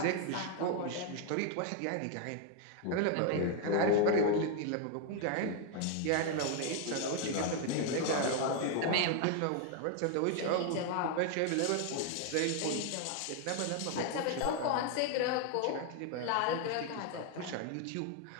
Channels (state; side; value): different; both; correlation 0.00